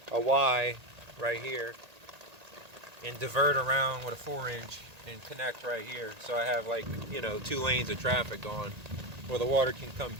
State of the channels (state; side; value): late; left; 1.8 ms